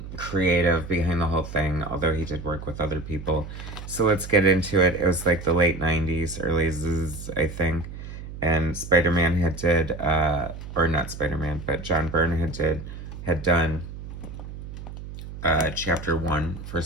creative behind the whole thing, although he did work with other people. So let's get into it. It was like the late 90s, early zzz, I think. And Spider-Man or not Spider-Man, but John Byrne had done chapter 1 for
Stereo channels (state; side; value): noise; right; hum, 11 dB below the sound